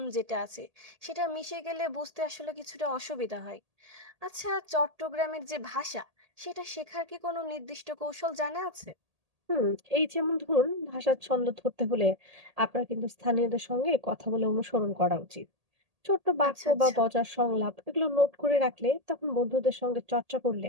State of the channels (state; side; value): late; left; 1.8 ms